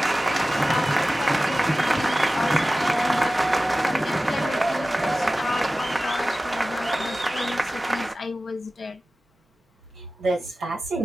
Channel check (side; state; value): both; normal; correlation 0.96